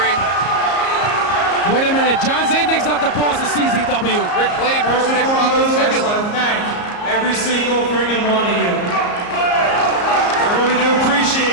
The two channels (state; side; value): late; right; 34 ms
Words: Wait a minute, John Zandig's not the boss of CZW. Rick Blade First broke and Nick foremost, Monaghan's I just fibula. want to thank every single friggin' one of you. I really do